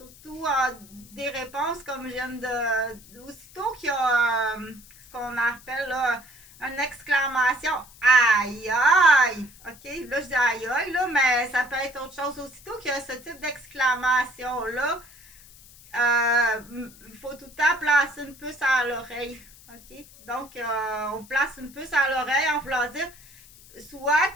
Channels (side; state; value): left; noise; hiss, 23 dB below the sound